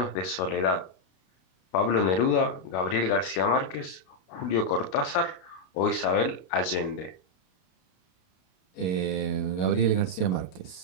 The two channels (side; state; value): right; late; 32 ms